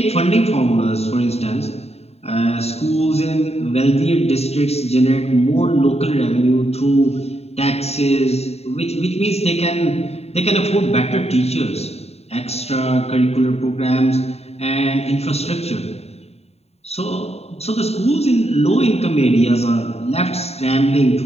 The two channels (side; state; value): right; late; 0.30 ms